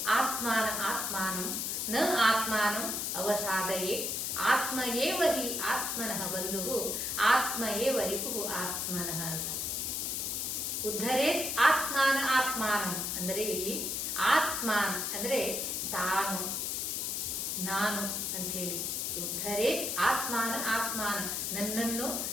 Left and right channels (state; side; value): noise; left; hiss, 1 dB below the sound